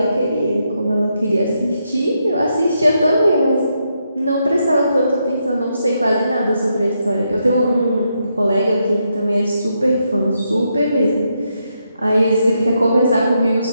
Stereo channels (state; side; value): inverted; both; correlation -0.81